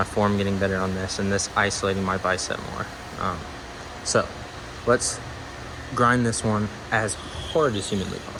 form getting better on this, and this isolating my bicep more. So let's grind this one as hard as humanly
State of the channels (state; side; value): identical; both; correlation 1.00